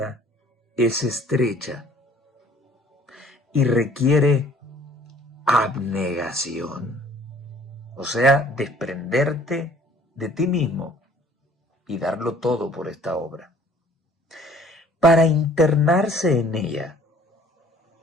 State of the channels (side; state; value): both; normal; correlation 0.55